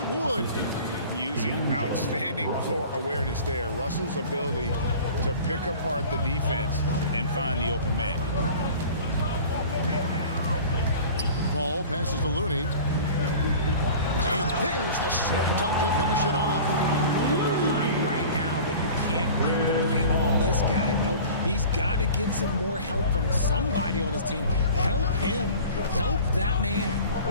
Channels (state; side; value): inverted; both; correlation -0.41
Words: Wood. Using outstanding floor awareness there. Russell's ability to pick apart the defense and find the open man. Paul passes to Looney. And there's the slam dunk to finish it off. You're behind right now, but you can't pin the blame on this guy. Nope, he's got to get some more help from somebody on his team. Help him. Help that man.